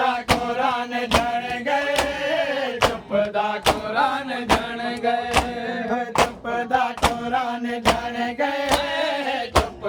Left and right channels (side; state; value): both; identical; correlation 1.00